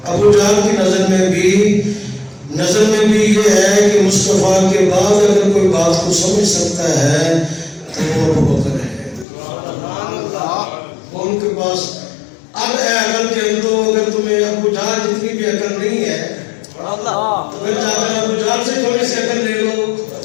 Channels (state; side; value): drops out; right; at 9.2 s